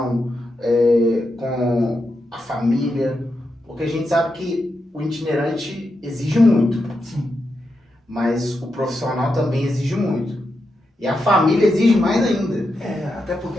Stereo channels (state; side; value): normal; both; correlation 0.86